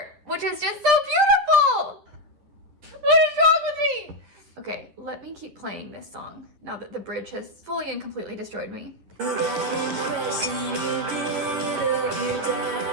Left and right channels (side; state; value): left; late; 10 ms